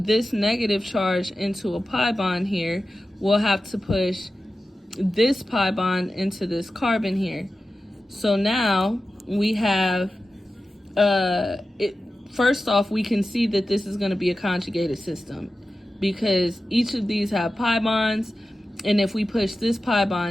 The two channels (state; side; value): normal; both; correlation 0.93